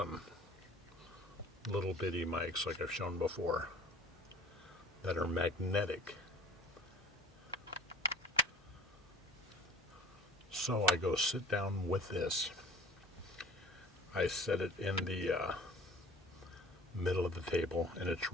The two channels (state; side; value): normal; both; correlation 0.48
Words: little bitty mics like I've shown before that are magnetic. So I go sit down with this. I set it in the middle of the table, and it's